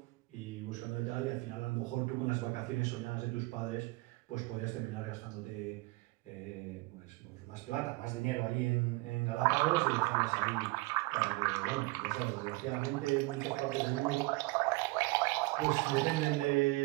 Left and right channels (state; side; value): quieter; left; 22.8 dB